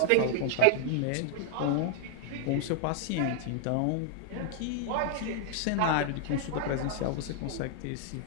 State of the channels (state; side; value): different; both; correlation -0.01